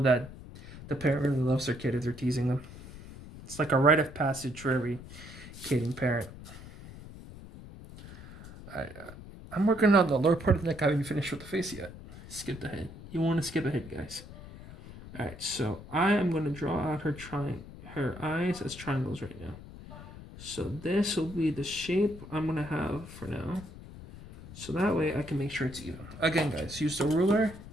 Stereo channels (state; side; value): noise; left; rumble, 15 dB below the sound